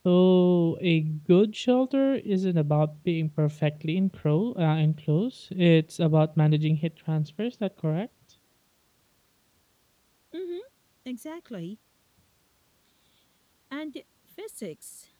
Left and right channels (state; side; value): identical; both; correlation 1.00